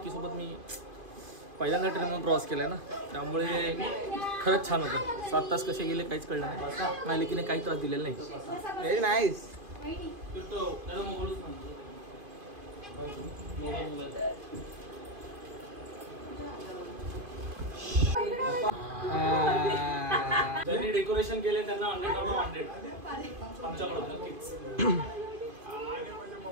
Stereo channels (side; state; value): left; late; 2.5 ms